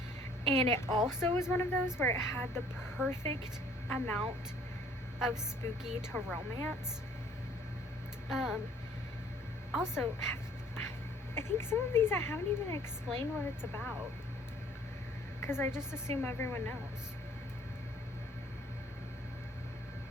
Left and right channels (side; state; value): both; normal; correlation 0.57